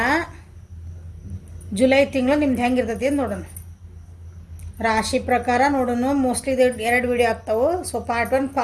ಜುಲೈ ತಿಂಗಳು ನಿಮ್ದು ಹೆಂಗಿರ್ತೈತಿ ಅಂತ ನೋಡೋಣ. ರಾಶಿ ಪ್ರಕಾರ ನೋಡೋಣ. ಮೋಸ್ಟ್ಲಿ ಇದು 2 ವಿಡಿಯೋ ಆಗ್ತಾವೆ. So part 1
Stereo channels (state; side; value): identical; both; correlation 1.00